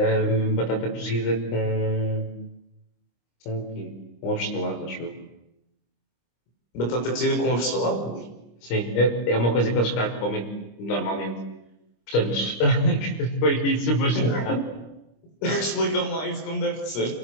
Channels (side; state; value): right; late; 25 ms